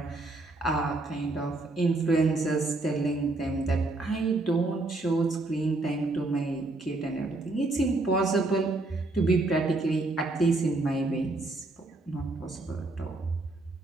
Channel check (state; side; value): quieter; left; 3.0 dB